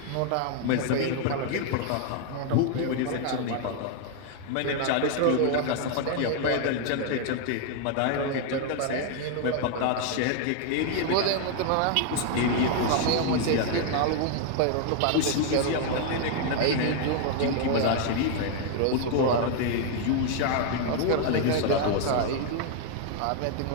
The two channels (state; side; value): different; both; correlation 0.00